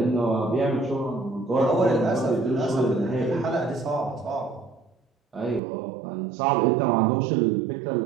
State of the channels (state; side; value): drops out; left; at 5.6 s